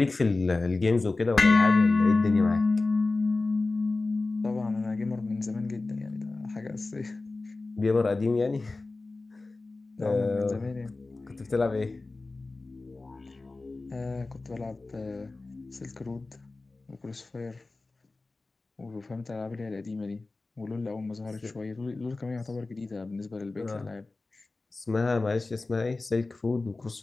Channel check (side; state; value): right; quieter; 3.4 dB